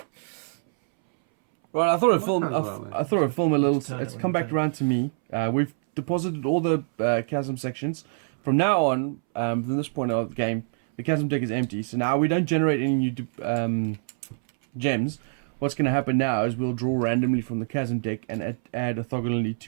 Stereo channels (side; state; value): left; silent; 62 dB below the other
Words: Right, I thought I'd film. I thought I'd film a little. It's come back around to me. We've deposited all the chasm sections. From now on, from this point of the game, the chasm deck is empty. So now we don't generate any new gems. What's going to happen now is we'll draw randomly from the chasm deck and add orthogonally